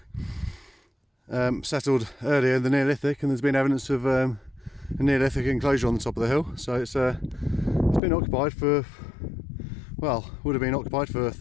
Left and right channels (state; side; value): drops out; right; at 8.0 s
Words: settled earlier in the Neolithic, and there's been evidence of a Neolithic enclosure on the top of the hill. So it's been occupied for, well, would have been occupied for